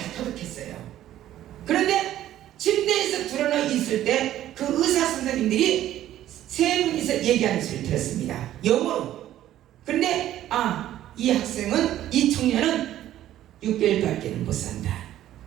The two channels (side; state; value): left; quieter; 12.8 dB